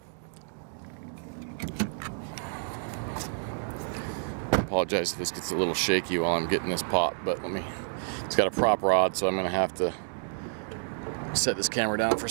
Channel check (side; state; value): left; silent; digital silence